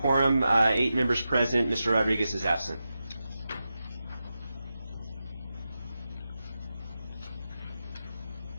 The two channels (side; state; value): both; inverted; correlation -0.91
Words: 8 members present. Mr. Rodriguez is absent.